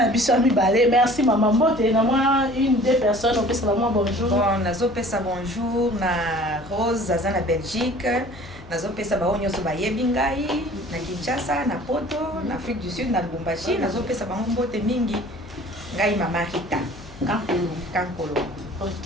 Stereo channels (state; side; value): noise; left; hum, 19 dB below the sound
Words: na biso ya mibale merci mama mbote na mwa une deux personnes opesa bango bonjour bon nazopesa bonjour na Rose aza na Belgique nazopesa bango nyonso bayebi ngai na Kinshasa na Poto na Afrique du Sud na Lubumbashi nazopesa bango mbote mingi ngai mama Rita Kankolongo.